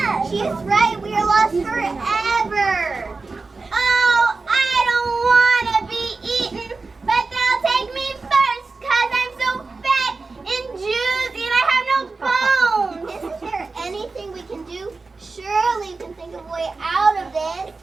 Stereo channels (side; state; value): left; quieter; 3.9 dB